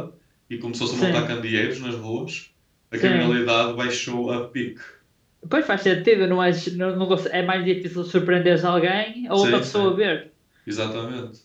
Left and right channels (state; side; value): identical; both; correlation 1.00